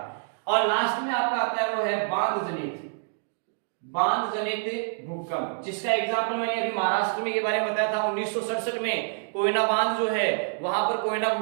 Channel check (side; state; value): left; silent; digital silence